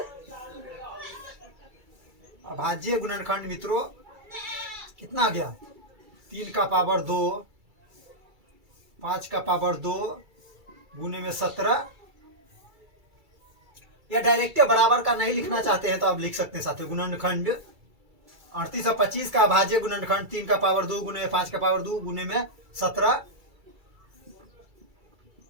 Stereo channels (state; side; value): late; left; 2.3 ms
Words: अभाज्य गुणनखंड मित्रों कितना आ गया? 3 का पावर 2, 5 का पावर 2 गुने में 17। या डायरेक्ट बराबर का नहीं लिखना चाहते हैं तो आप लिख सकते हैं साथियों गुणनखंड 38 और 25 का अभाज्य गुणनखंड 3 का पावर 2 गुने में 5 का पावर 2 गुने में 17